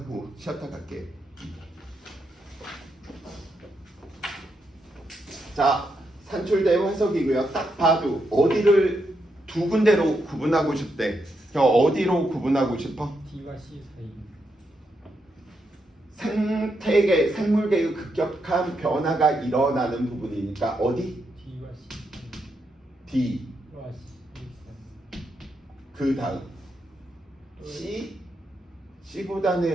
쉬었다 갈게. 자, 산출대 화석이고요. 딱 봐도 어디를 2군데로 구분하고 싶대. 저 어디로 구분하고 싶어? D와 C 사이. 생태계, 생물계의 급격한 변화가 일어나는 부분이니까 어디? D와 C 사이. D와 C 사이. 그 다음 C?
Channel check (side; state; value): both; normal; correlation 0.81